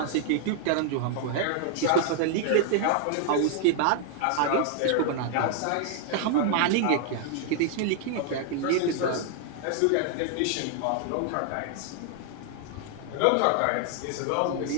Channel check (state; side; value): different; both; correlation 0.00